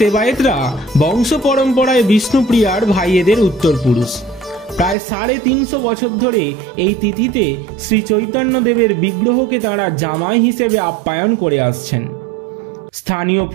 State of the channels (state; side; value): drops out; left; at 5.0 s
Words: বংশ পরম্পরায় বিষ্ণুপ্রিয়ার ভাইয়েদের উত্তরপুরুষ। প্রায় 350 বছর ধরে এই তিথিতে শ্রী চৈতন্যদেবের বিগ্রহকে তাঁরা জামাই হিসেবে আপ্যায়ন করে আসছেন। স্থানীয়